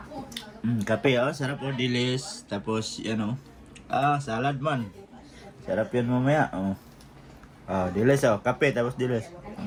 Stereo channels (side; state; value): both; identical; correlation 1.00